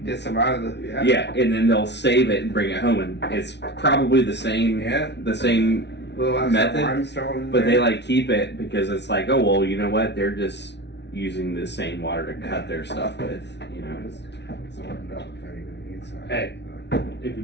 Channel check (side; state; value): right; late; 0.50 ms